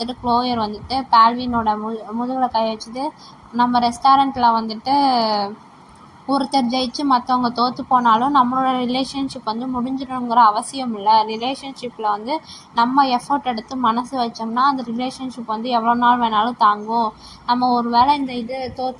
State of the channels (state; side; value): identical; both; correlation 1.00